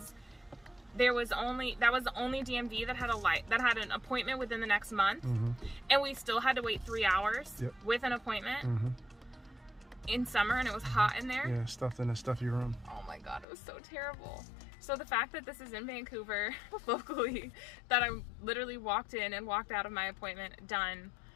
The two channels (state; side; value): drops out; right; at 13.5 s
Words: that was the only DMV that had an appointment within the next month, and we still had to wait 3 hours with an appointment in summer, and it was hot in there. Yeah, stuffed in a stuffy room. Oh my god, it was so terrible. So the fact that this is in Vancouver locally, that I literally walked in and walked out of my appointment done